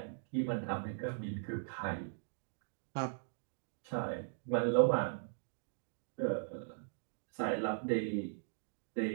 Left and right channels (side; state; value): left; silent; digital silence